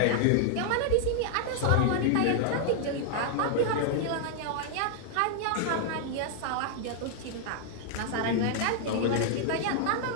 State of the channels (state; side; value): different; both; correlation -0.01